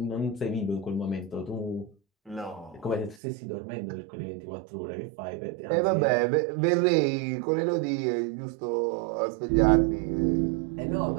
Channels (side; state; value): left; drops out; at 3.2 s